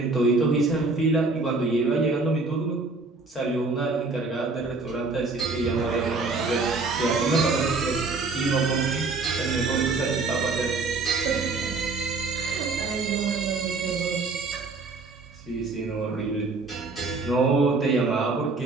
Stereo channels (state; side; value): quieter; left; 3.7 dB